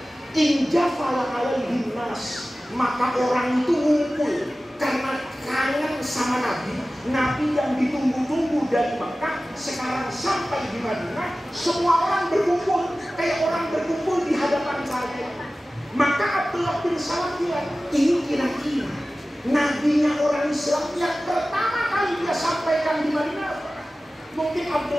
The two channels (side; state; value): both; normal; correlation 0.96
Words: injafala alaihi nas, maka orang itu ngumpul karena kangen sama Nabi. Nabi yang ditunggu-tunggu dari Mekah sekarang sampai di Madinah, semua orang berkumpul kayak orang berkumpul di hadapan saya. Maka Abdullah bin Salam bilang, ini kira-kira nabinya orang Islam yang pertama kali dia sampaikan di Madinah. Mungkin